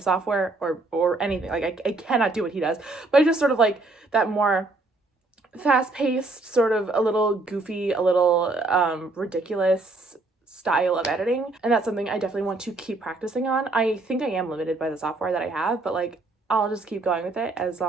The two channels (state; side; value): quieter; left; 3.2 dB